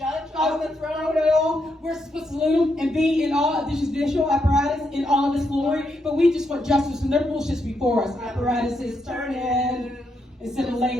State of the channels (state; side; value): normal; both; correlation 0.80